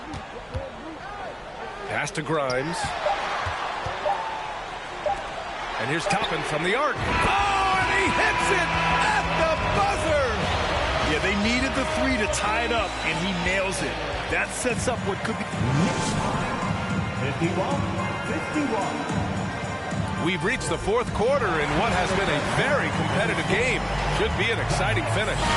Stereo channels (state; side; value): identical; both; correlation 1.00